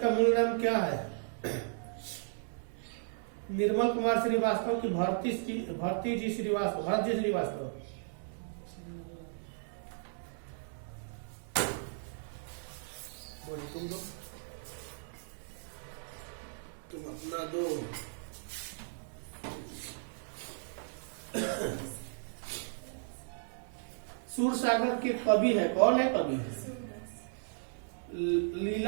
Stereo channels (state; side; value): silent; left; digital silence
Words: का मूल नाम क्या है? निर्मल कुमार श्रीवास्तव की भरत जी श्रीवास्तव। तुम दो, तुम अपना दो। सूरसागर के कवि है कौन है? कवि